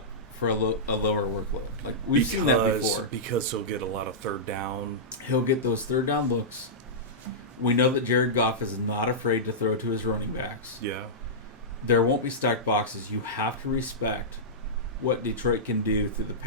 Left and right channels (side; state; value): both; normal; correlation -0.14